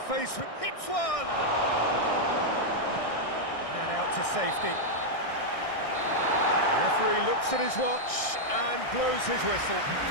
with... hits one! And out to safety. Referee looks at his watch and blows his whistle.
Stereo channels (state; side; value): late; right; 1.6 ms